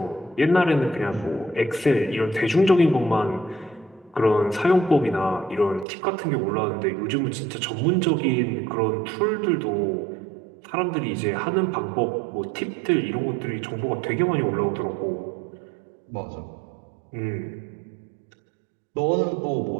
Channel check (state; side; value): drops out; left; at 5.9 s